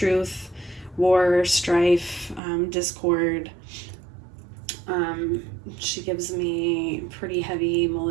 war, strife, discord. She gives me pretty heavy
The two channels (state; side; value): drops out; left; at 2.4 s